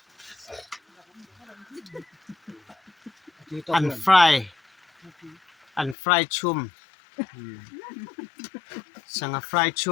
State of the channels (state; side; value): drops out; right; at 6.0 s